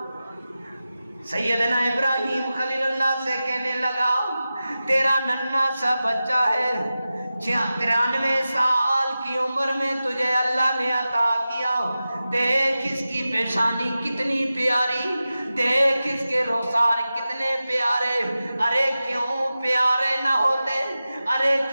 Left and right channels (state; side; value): inverted; both; correlation -0.94